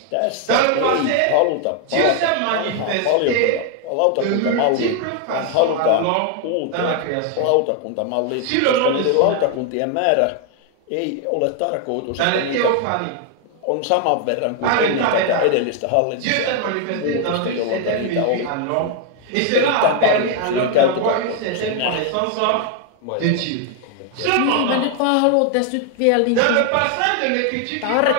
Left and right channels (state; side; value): different; both; correlation 0.00